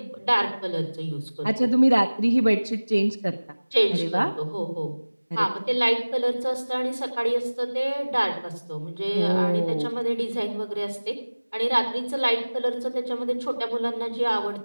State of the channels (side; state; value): both; inverted; correlation -1.00